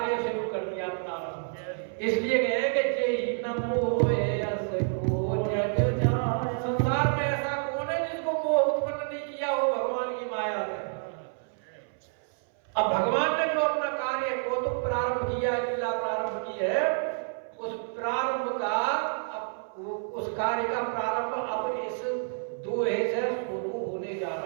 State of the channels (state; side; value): silent; left; 59 dB below the other